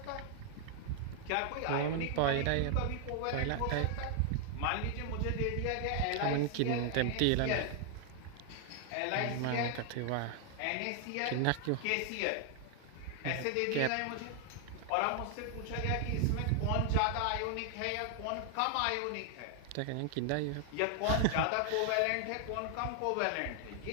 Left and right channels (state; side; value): different; both; correlation 0.00